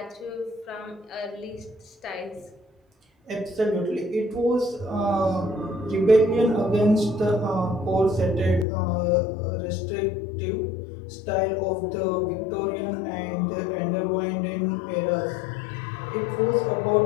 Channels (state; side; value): drops out; right; at 8.7 s